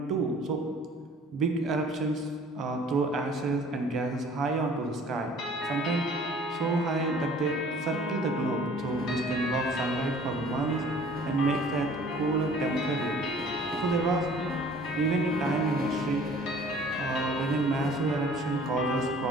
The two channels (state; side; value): normal; both; correlation 0.51